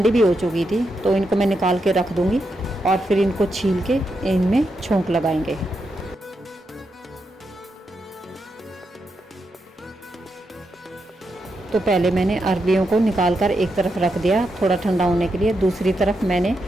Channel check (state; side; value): normal; both; correlation 0.84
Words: भी हो चुकी थी, तो इनको मैं निकाल के रख दूँगी और फिर इनको छील के इनमें छोंक लगाएंगे। तो पहले मैंने अरबियों को निकाल कर एक तरफ रख दिया थोड़ा ठंडा होने के लिए। दूसरी तरफ मैंने